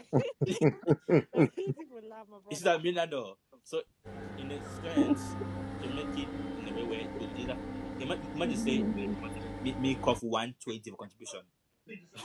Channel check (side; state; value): both; identical; correlation 1.00